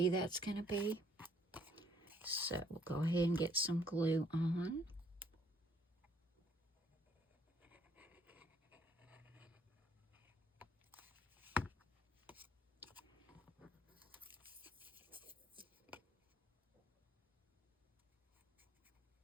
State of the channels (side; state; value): both; normal; correlation 0.65